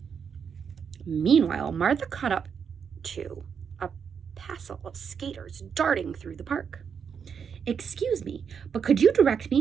Meanwhile, Martha caught up to a passel of skaters darting through the park. "Excuse me, but could you direct me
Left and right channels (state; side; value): quieter; left; 6.9 dB